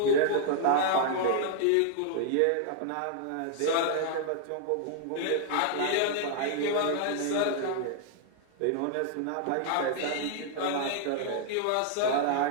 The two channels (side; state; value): both; different; correlation 0.00